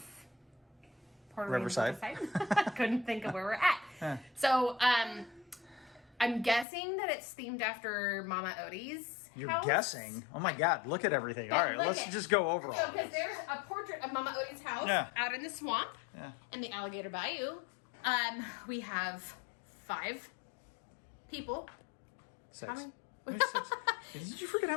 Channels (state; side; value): drops out; right; at 6.7 s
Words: Riverside. Couldn't think of where we're at. Yeah. So I'm guessing that it's themed after Mama Odie's You're house. guessing? Oh my god, look at everything. Yeah, Alright, look let's it. just go over So all because this. there's a portrait of Mama Odie's house Yeah. out in the swamp Yeah. in the Alligator Bayou. We have 5 people. 6. How many? There's 6. Did you forget how